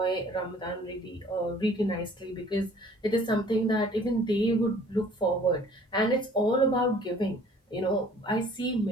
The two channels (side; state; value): both; normal; correlation 0.53